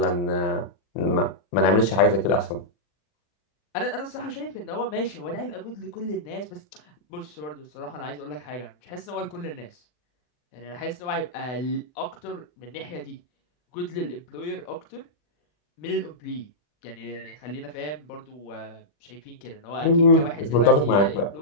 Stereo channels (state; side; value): late; right; 40 ms